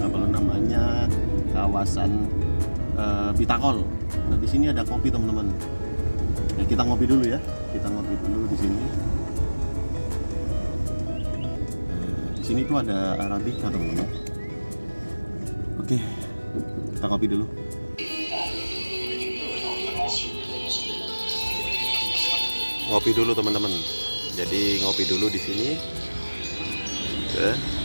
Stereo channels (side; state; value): both; inverted; correlation -1.00